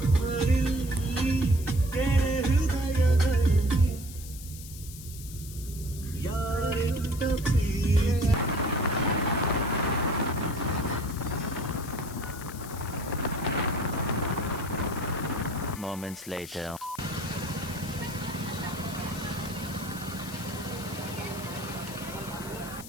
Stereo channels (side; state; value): left; noise; hiss, 14 dB below the sound